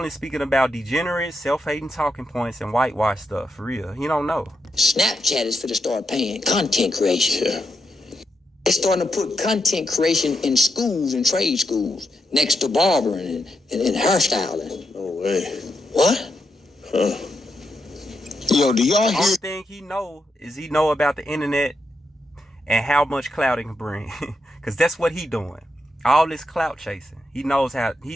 speaking about degenerate, self-hating talking points and whitewash stuff. For real, he don't know. Snapchat is for to start paying content creation. Yeah. It's starting to put content creation in schools and trade schools next to barbering and hairstyling. No way. What? Huh. Yo, do y'all hear? The only thing he know about the internet and how much clout it can bring. Because that's what he doing. All this clout chasing. He knows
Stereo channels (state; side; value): normal; both; correlation 0.83